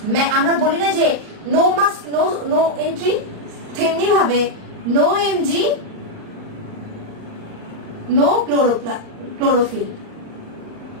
আমরা বলি না যে নো মাস্ক নো এন্ট্রি, তেমনি ভাবে no Mg no chlorophyll,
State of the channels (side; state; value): left; late; 39 ms